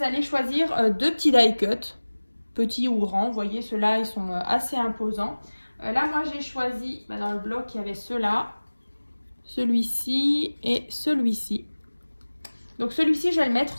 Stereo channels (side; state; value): both; inverted; correlation -1.00